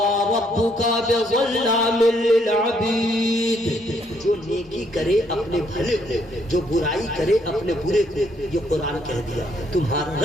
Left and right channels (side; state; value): both; normal; correlation 0.70